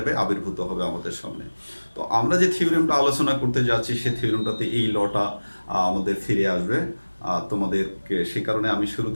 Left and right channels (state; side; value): inverted; both; correlation -1.00